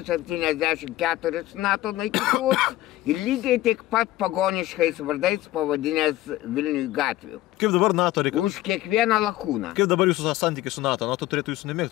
NATO naikintuvus ir lygiai tik pat pagoniškais vardais pavadinęs Vilniui gatvių. Kaip dabar NATO reikia? Už kiekvieną lakūną. Kaip dabar jūsų santykiai su NATO? NATO turėtų jūsų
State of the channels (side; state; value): right; quieter; 15.9 dB